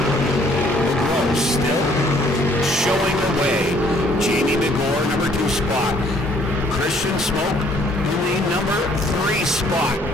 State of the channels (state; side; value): normal; both; correlation 0.62